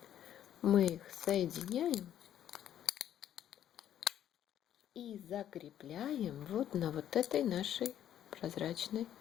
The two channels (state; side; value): quieter; right; 10.7 dB